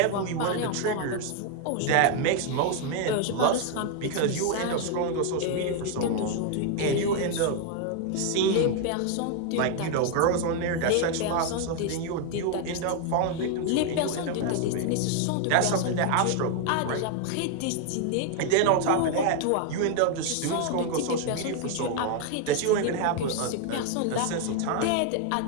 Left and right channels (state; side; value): different; both; correlation 0.00